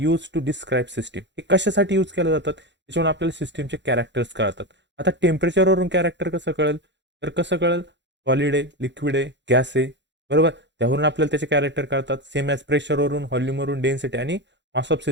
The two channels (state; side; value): late; left; 0.52 ms